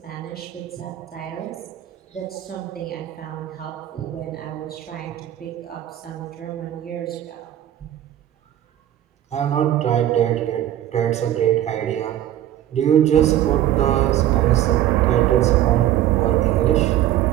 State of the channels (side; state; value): left; quieter; 12.3 dB